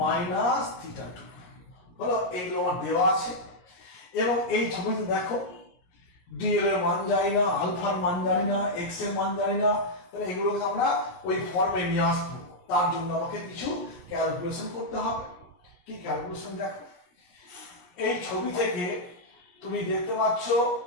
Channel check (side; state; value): right; late; 17 ms